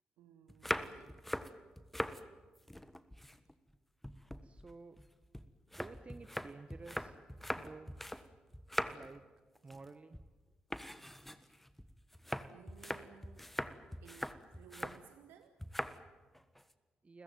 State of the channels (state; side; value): normal; both; correlation 0.98